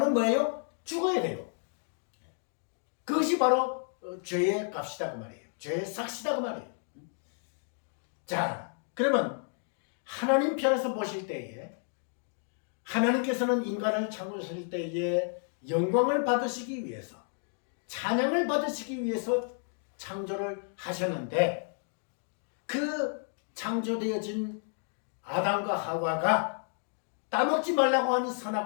뭐예요? 죽어야 돼요. 그것이 바로 죄의 값이다 그 말이에요. 죄의 삭시다 그 말이에요. 자, 그러면 하나님 편에서 보실 때에 하나님께서는 인간을 창조하실 때에 영광을 받으시기 위해서 찬양을 받으시기 위해서 창조를 하셨는데 그 창조되어진 아담과 하와가 따먹지 말라고 하는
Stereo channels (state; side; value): silent; right; 57 dB below the other